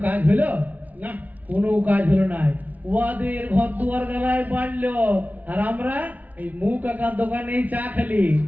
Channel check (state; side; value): late; left; 0.075 ms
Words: কাজ হলো না, কোনো কাজ হলো না। ওদের ঘর দুয়ার গলায় বাড়লো, আর আমরা এই মুখ কাকার দোকানে চা খেলি।